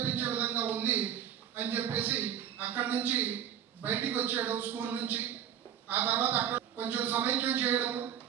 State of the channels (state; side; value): quieter; left; 9.4 dB